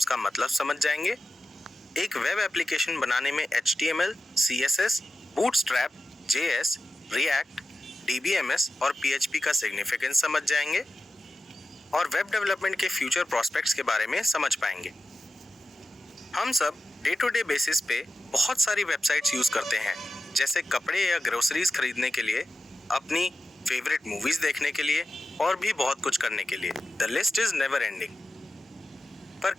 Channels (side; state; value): both; normal; correlation 0.92